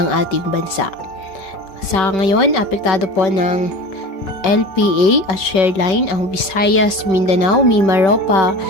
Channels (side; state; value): right; late; 5.3 ms